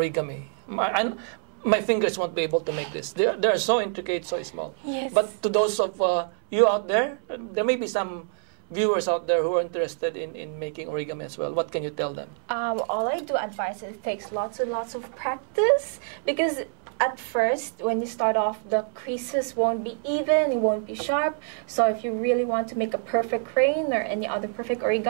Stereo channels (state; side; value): silent; left; 60 dB below the other